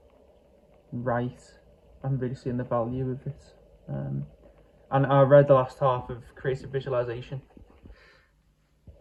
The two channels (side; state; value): both; identical; correlation 1.00